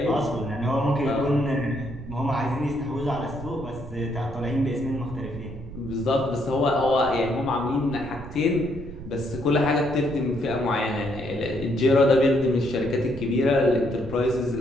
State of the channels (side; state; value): right; noise; rumble, 13 dB below the sound